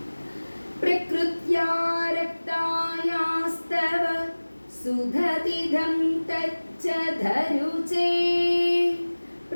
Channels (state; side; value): inverted; both; correlation -1.00